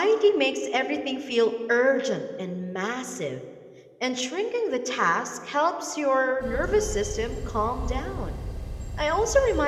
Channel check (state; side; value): identical; both; correlation 1.00